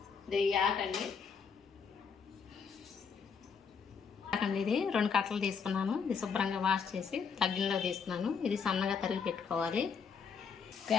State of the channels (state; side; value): quieter; right; 6.1 dB